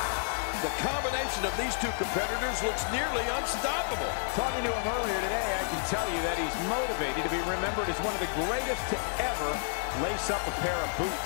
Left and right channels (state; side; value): silent; right; digital silence